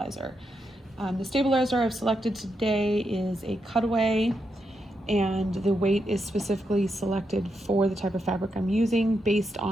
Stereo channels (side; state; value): both; normal; correlation 0.83